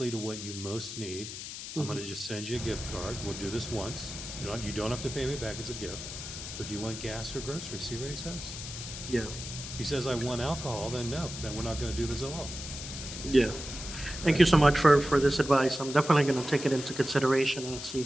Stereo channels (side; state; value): left; noise; hiss, 9 dB below the sound